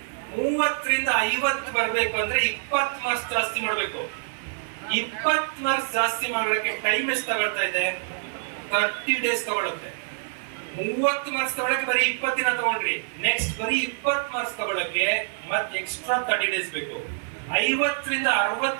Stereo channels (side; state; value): left; silent; 55 dB below the other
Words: 30ರಿಂದ 50 ಬರ್ಬೇಕು ಅಂದ್ರೆ 20 ಮಾರ್ಕ್ಸ್ ಜಾಸ್ತಿ ಮಾಡ್ಬೇಕು. 20 ಮಾರ್ಕ್ಸ್ ಜಾಸ್ತಿ ಮಾಡೋಕೆ ಟೈಮ್ ಎಷ್ಟು ತಗೊಳ್ತಾ ಇದೆ? 30 ಡೇಸ್ ತಗೊಳುತ್ತೆ. 30 ಮಾರ್ಕ್ಸ್ ತಗೊಳಕ್ಕೆ ಬರೀ 20 ದಿನ ತಗೊಂಡ್ರಿ, ನೆಕ್ಸ್ಟ್ ಬರೀ 20 ಮಾರ್ಕ್ಸ್ ತಗೊಳಕ್ಕೆ ಮತ್ತೆ ಎಕ್ಸ್ಟ್ರಾ 30 ಡೇಸ್ ಬೇಕು. 50ರಿಂದ